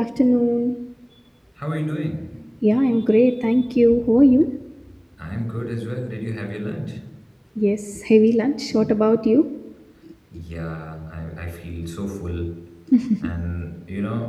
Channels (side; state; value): both; identical; correlation 1.00